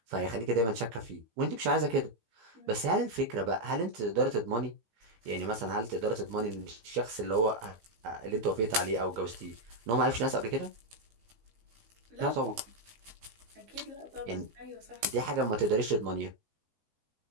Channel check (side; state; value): left; late; 18 ms